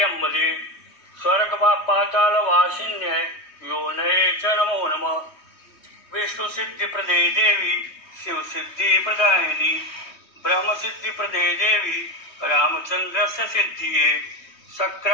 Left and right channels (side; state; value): right; late; 3.2 ms